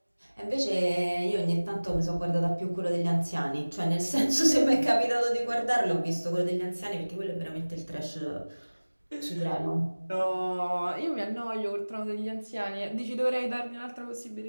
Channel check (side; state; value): both; inverted; correlation -1.00